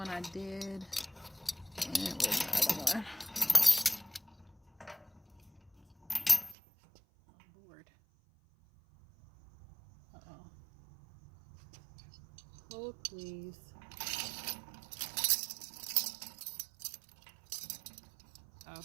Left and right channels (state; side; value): drops out; left; at 6.6 s